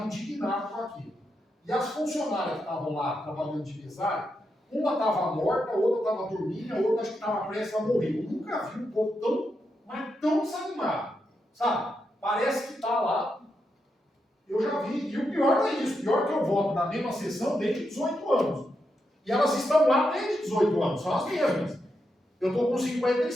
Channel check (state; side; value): normal; both; correlation 0.84